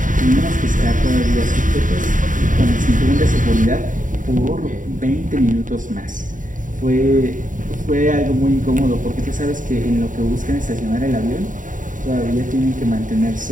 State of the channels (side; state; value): left; late; 0.38 ms